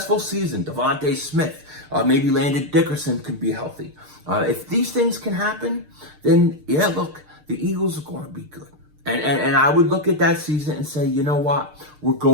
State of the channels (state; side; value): late; left; 6.6 ms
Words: season, Devontae Smith, maybe Landon Dickerson could be healthy. If these things can happen, then yeah, look, the Eagles are going to be good. And I would look at that season and say, you know what? We're